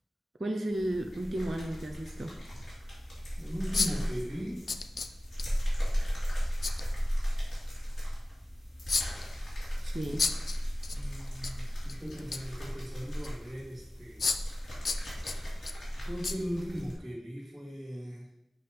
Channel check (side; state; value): both; normal; correlation 0.96